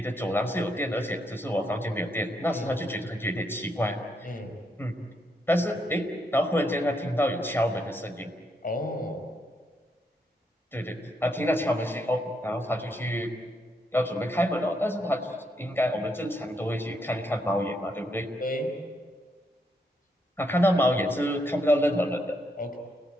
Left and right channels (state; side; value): normal; both; correlation 0.77